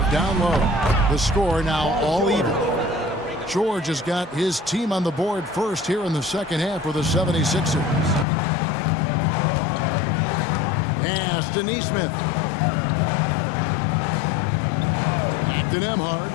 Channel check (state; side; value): drops out; right; at 8.2 s